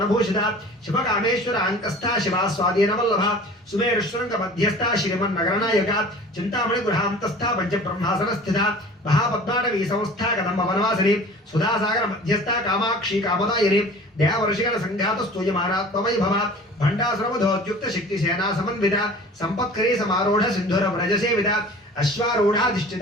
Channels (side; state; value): both; normal; correlation 0.43